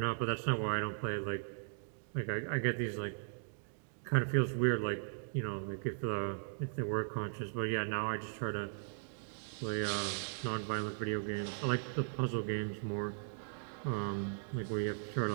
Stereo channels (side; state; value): left; silent; digital silence